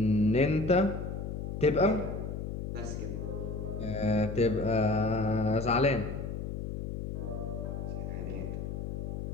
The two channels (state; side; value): noise; left; hum, 5 dB below the sound